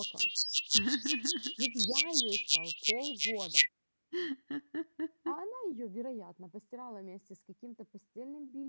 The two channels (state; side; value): inverted; both; correlation -1.00